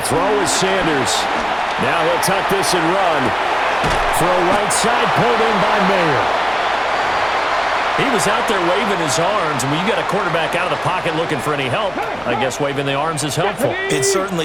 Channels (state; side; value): noise; left; hum, 24 dB below the sound